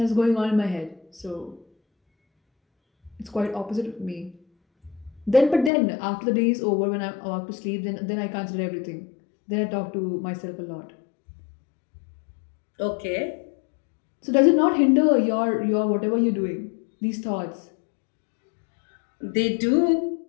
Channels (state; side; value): drops out; right; at 5.7 s